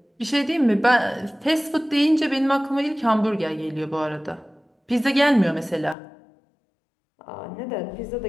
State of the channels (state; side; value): drops out; right; at 6.0 s